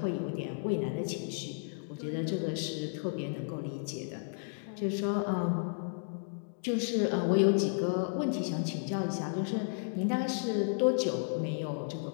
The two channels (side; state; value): right; silent; digital silence